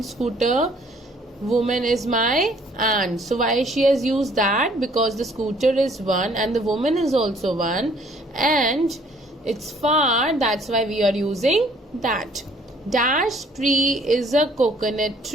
scooter, woman is my aunt. So why she has used that? Because the scooter is one and the woman is also one, and it's far. That's why we are using that. Dash tree is a coconut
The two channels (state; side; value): normal; both; correlation 0.60